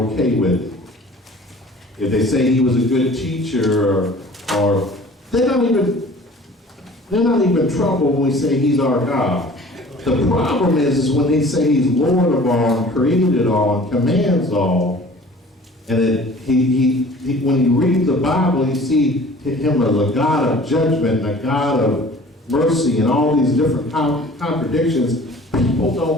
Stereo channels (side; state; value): both; normal; correlation 0.47